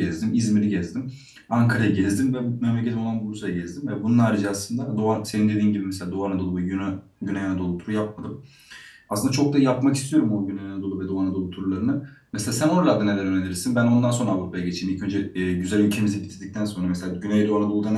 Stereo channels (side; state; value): both; identical; correlation 1.00